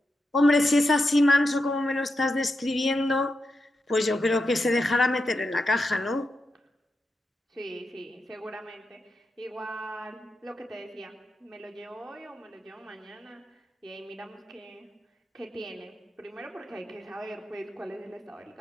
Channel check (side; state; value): both; normal; correlation 0.87